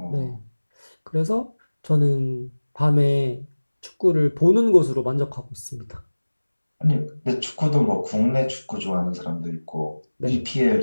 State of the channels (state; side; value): inverted; both; correlation -1.00